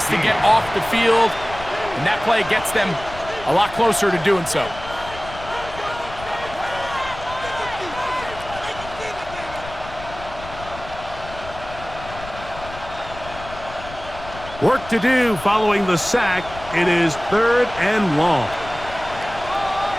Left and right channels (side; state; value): left; noise; rumble, 14 dB below the sound